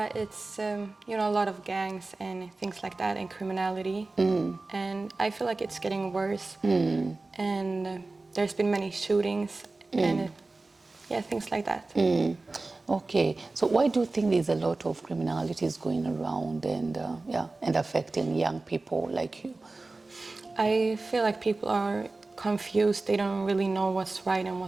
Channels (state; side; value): quieter; left; 3.3 dB